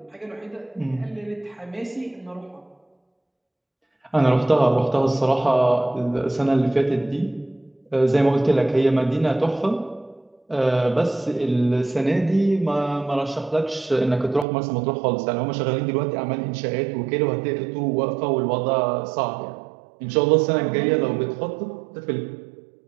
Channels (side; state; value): left; drops out; at 14.5 s